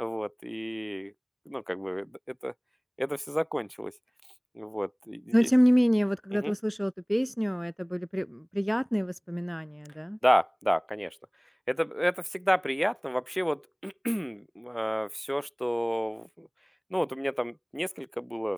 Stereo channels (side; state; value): both; identical; correlation 1.00